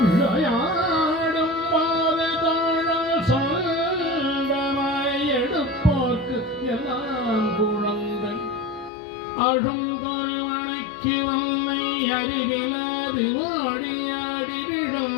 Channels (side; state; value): right; drops out; at 8.9 s